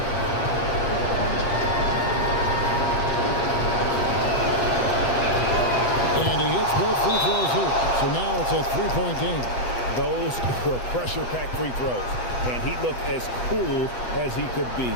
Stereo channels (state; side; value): late; right; 8.0 ms